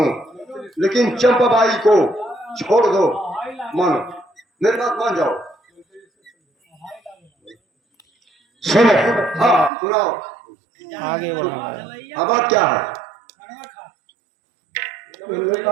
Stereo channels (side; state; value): left; drops out; at 9.7 s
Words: लेकिन चंपाबाई को छोड़ दो। मानो, मेरी बात मान जाओ। सुनो, हाँ सुनाओ, आगे बढ़ा अब बात क्या है?